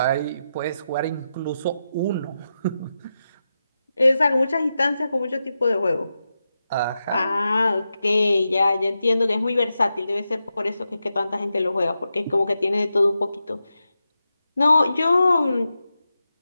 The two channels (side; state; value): both; inverted; correlation -0.89